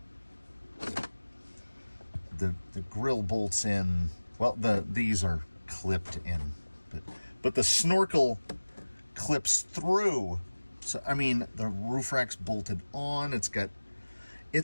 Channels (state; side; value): inverted; both; correlation -1.00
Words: the grill bolts in. Well, these are clipped in, but the snorkel clips through. So I mean, the roof rack's bolted on. It's got